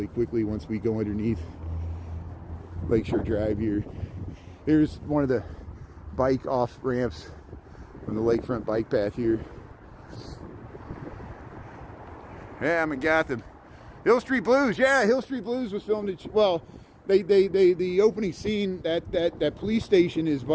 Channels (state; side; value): identical; both; correlation 1.00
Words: quickly once we go underneath Lakeshore Drive here. Here's one of the bike off ramps on the lakefront bike path here. Yeah, I'm in Gotham. Hill Street Blues. Yeah, Hill Street Blues was filmed at, well, the opening scene, that police station is